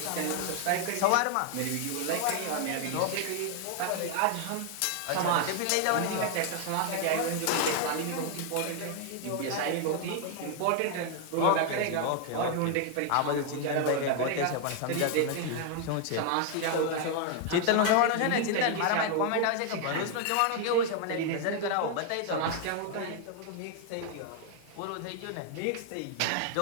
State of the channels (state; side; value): different; both; correlation 0.00